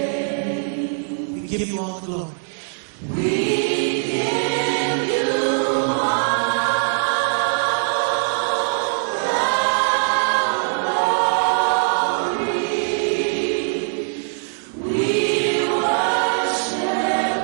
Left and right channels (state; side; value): silent; left; digital silence